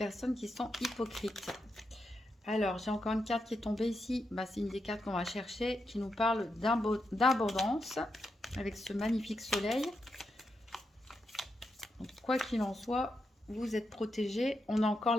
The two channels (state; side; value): normal; both; correlation 0.85